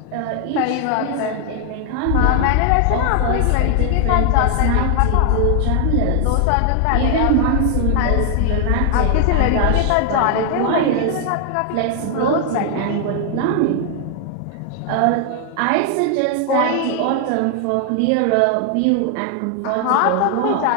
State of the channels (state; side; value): different; both; correlation 0.00